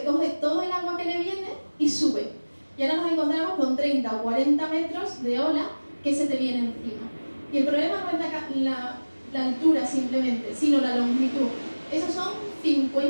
coge todo el agua que le viene y sube. Y ahora nos encontramos con 30 o 40 metros de ola que se te viene encima. Y el problema no es la altura simplemente, sino la longitud. Esos son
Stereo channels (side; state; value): both; inverted; correlation -1.00